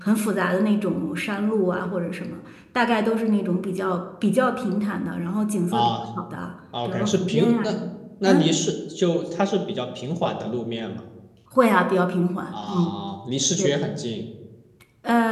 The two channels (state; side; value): identical; both; correlation 1.00